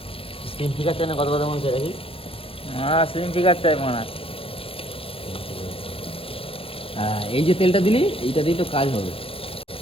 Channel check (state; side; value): late; right; 0.27 ms